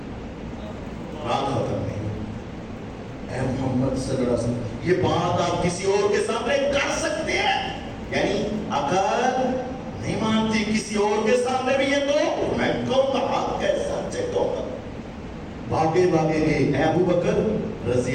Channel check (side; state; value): both; identical; correlation 1.00